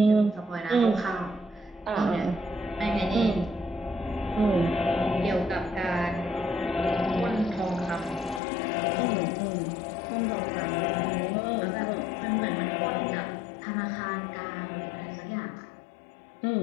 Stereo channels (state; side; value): drops out; right; at 8.4 s